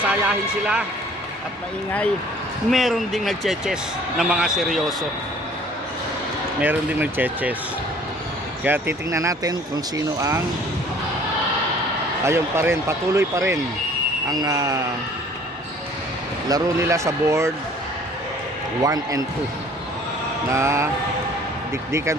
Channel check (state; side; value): normal; both; correlation 0.53